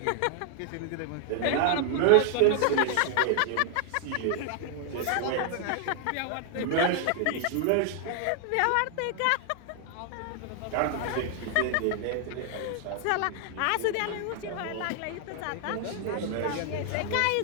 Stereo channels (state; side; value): different; both; correlation 0.00